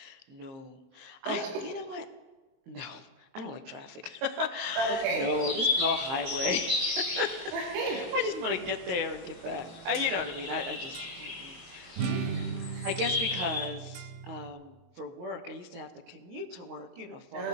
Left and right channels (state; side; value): late; left; 22 ms